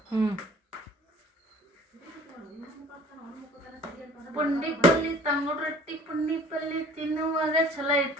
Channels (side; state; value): both; normal; correlation 0.48